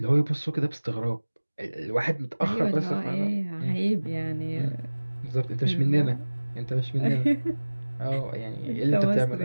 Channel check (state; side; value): inverted; both; correlation -1.00